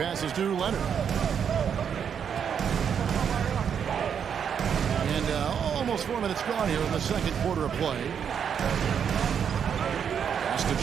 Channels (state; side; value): quieter; left; 7.7 dB